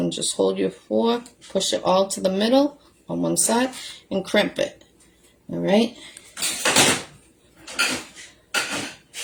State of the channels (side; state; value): both; identical; correlation 1.00